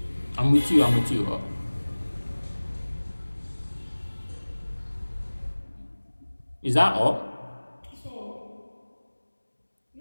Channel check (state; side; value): inverted; both; correlation -1.00